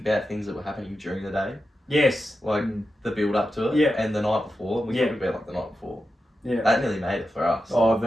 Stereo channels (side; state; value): both; normal; correlation 0.90